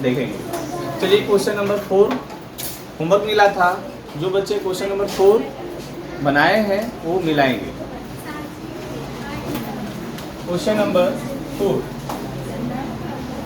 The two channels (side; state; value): both; identical; correlation 1.00